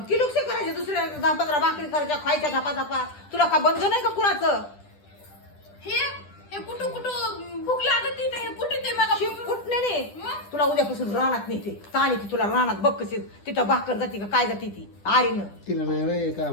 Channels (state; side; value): late; right; 10 ms